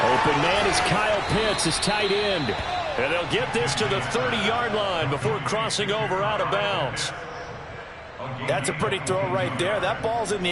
Open man is Kyle Pitts, his tight end. And they'll get this to the 30-yard line before crossing over out of bounds. That's a pretty throw right there. That ball's in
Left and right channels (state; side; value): identical; both; correlation 1.00